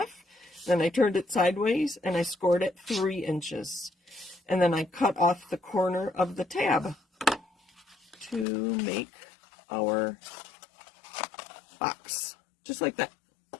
Then I turned it sideways, and I scored it 3 inches. And then I cut off the corner of the tab to make our box, just like that.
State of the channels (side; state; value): right; drops out; at 8.5 s